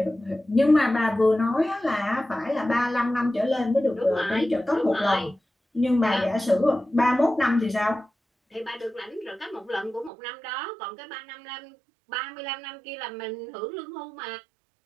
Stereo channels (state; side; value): drops out; left; at 10.1 s